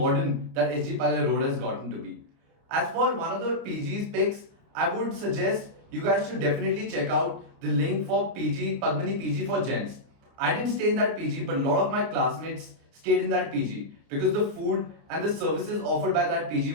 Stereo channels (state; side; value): late; left; 29 ms